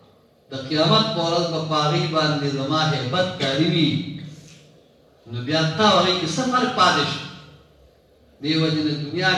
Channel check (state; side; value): identical; both; correlation 1.00